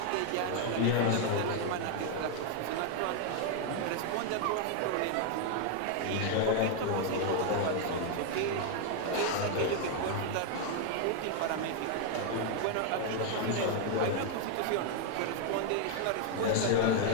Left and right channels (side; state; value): both; different; correlation 0.00